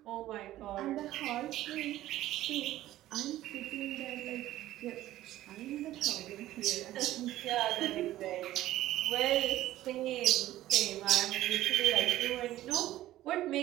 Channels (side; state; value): left; quieter; 14.6 dB